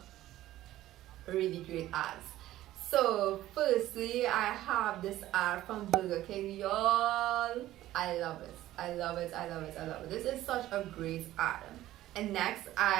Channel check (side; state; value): left; quieter; 14.7 dB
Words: really great ads. So firstly, I have this ad from Burger King, y'all. I love it. This is such a great ad. And next